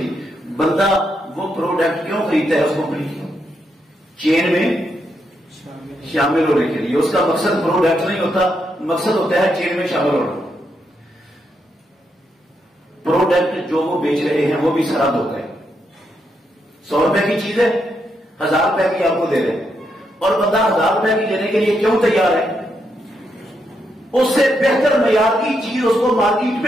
بندہ وہ پروڈکٹ کیوں خریدتا ہے اس کمپنی کی؟ چین میں شامل ہونے کے لیے. اس کا مقصد پروڈکٹ نہیں ہوتا, مقصد ہوتا ہے چین میں شامل ہونا. پروڈکٹ جو وہ بیچ رہے ہیں وہ بھی سارا دھوکا ہے. 100 روپے کی چیز ہے, 1000 روپے کی آپ کو دے رہے ہیں, اور بندہ 1000 روپے کی لینے کے لیے کیوں تیار ہے؟ اس سے بہتر معیار کی چیز اس کو مارکیٹ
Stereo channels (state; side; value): normal; both; correlation 0.80